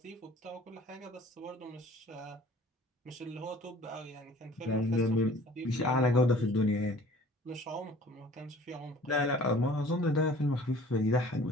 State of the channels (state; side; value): normal; both; correlation 0.49